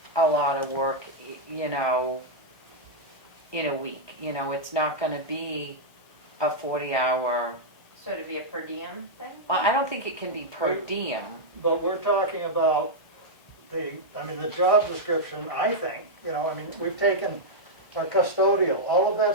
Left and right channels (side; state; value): right; late; 1.0 ms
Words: a lot of work, you know, in a week. You know, it's not gonna be a 40-hour, So it'd be a per diem thing? well, I don't think it can be per diem. But we're talking about the job description, I think, we've taken our custodial, all of